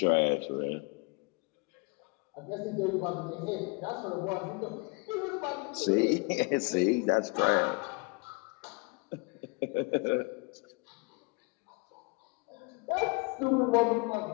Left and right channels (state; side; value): quieter; right; 30.0 dB